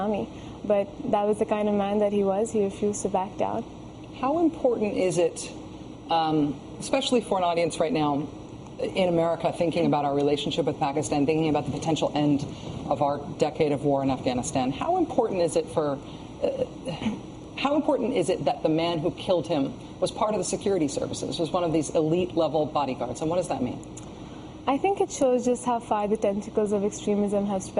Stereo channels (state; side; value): identical; both; correlation 1.00